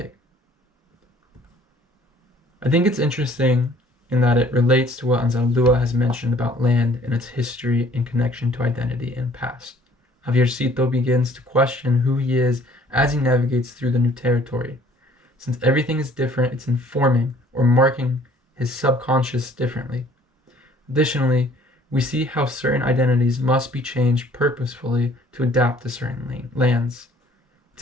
I think it's interesting in that it relates to what Anzaldúa has mentioned about land and its history in connection to identity and past. Javiercito begins to question who he is as he navigates through the new territory. Since everything is different, it's informing or marking his subconscious differently. Additionally, we see how certain identities must be changed purposefully to adapt to certain lands. It's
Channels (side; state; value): both; normal; correlation 0.57